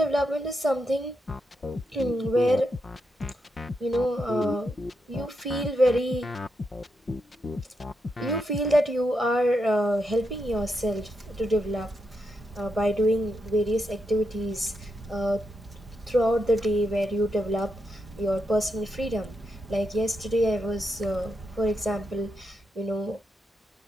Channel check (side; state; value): both; normal; correlation 0.83